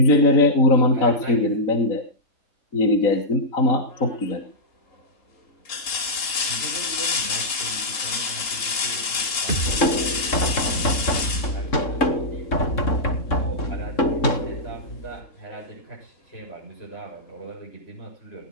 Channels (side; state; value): right; late; 3.8 ms